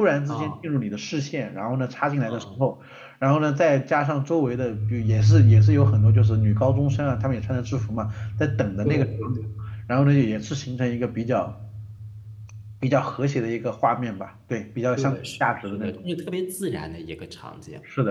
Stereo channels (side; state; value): both; identical; correlation 1.00